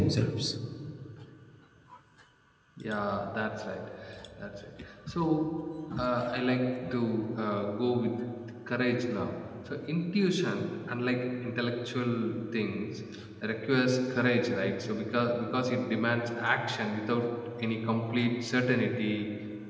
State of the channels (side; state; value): both; identical; correlation 1.00